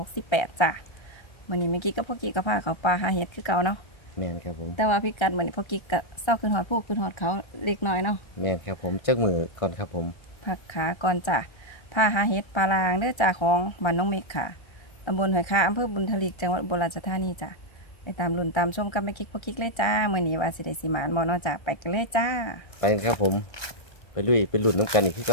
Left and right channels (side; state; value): right; late; 1.3 ms